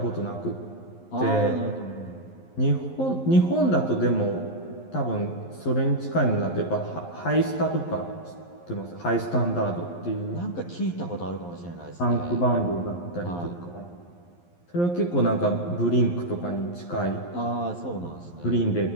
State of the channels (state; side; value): late; right; 11 ms